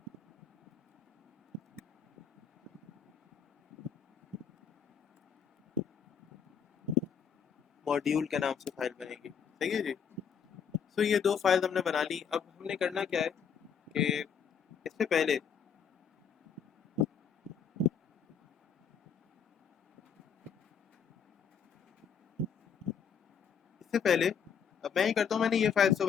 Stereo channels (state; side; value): quieter; right; 7.2 dB